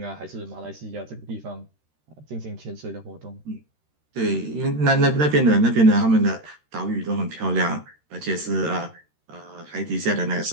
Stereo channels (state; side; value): late; left; 13 ms